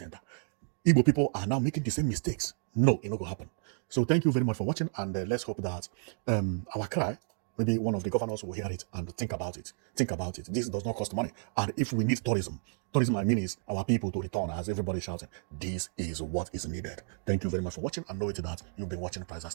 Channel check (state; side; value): silent; left; 57 dB below the other